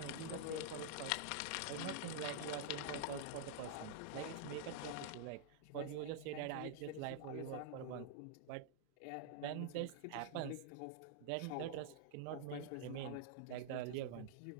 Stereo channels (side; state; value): both; different; correlation -0.01